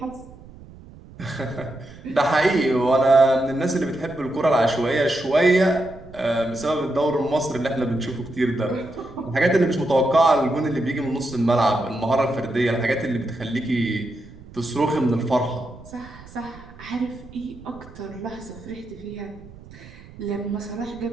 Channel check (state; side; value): noise; right; rumble, 19 dB below the sound